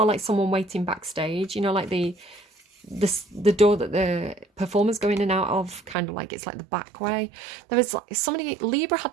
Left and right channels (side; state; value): left; drops out; at 6.0 s